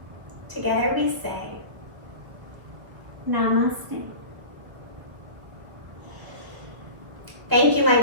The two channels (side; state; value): left; late; 1.4 ms